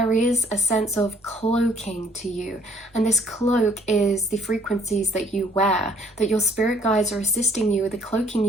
is a sense of cloaking to you. And this cloak is the frequencies that you wear, that your spirit guides are assisting you with cloaking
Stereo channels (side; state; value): both; normal; correlation 0.62